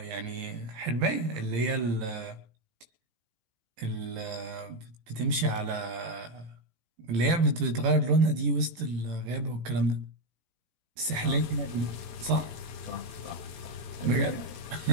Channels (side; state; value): left; late; 18 ms